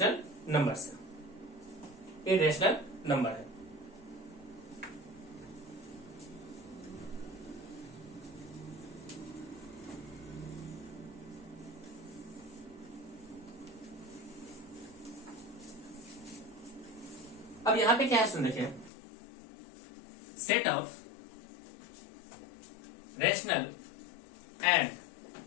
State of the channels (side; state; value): right; drops out; at 18.9 s